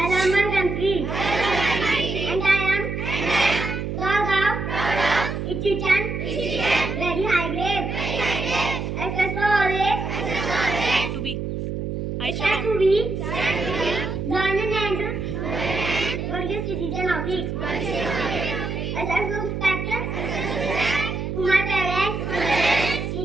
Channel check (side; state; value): right; noise; hum, 4 dB below the sound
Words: love my country. And I am proud of its citizen. Very high grade. SS always. To be. Stand to be. Learning and worthy citizen of it. SS respect to my parents,